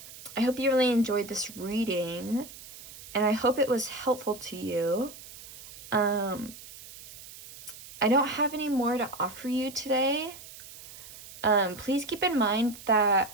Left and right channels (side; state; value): right; noise; hiss, 16 dB below the sound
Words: hope you really enjoyed this reading, and I hope it was helpful to you. I don't have any more to offer you today. Please keep in mind that